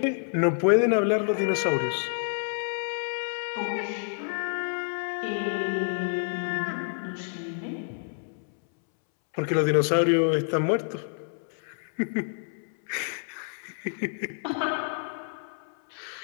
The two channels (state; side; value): silent; right; 59 dB below the other